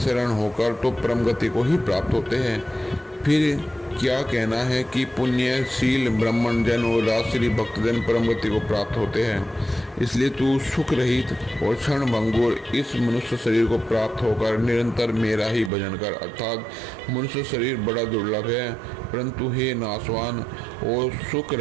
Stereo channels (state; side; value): drops out; left; at 15.7 s